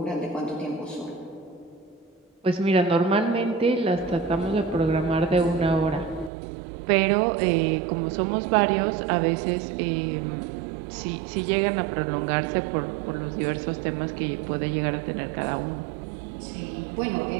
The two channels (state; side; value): drops out; left; at 6.3 s